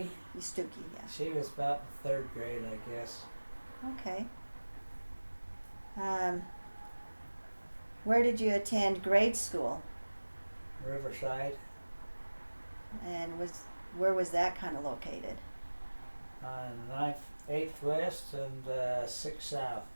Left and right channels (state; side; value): inverted; both; correlation -1.00